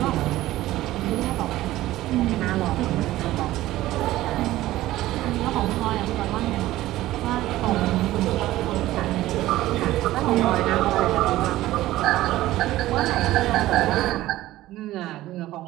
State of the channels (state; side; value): quieter; left; 15.8 dB